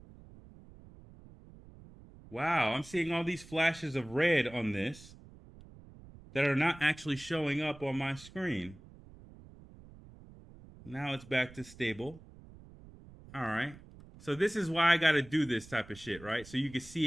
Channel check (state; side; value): noise; right; rumble, 20 dB below the sound